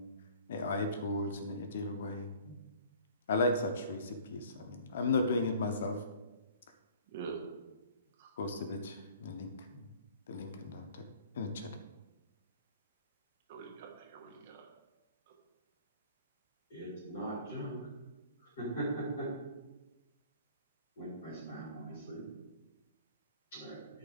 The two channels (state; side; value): inverted; both; correlation -0.50